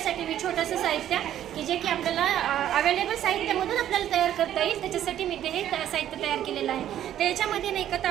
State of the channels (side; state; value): left; quieter; 11.3 dB